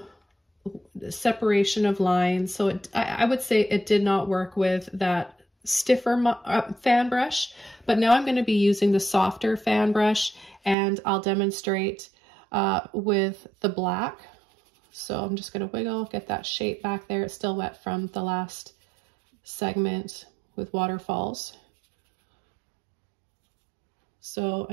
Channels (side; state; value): left; drops out; at 10.8 s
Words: separation of lines. So I would say it did not work with that stiffer fan brush, but now I'm going to be using the softer fan brush and I'll demonstrate with the black. So I'm just going to wiggle, get that shape back there. It's still wet from the last segment with waterfalls. So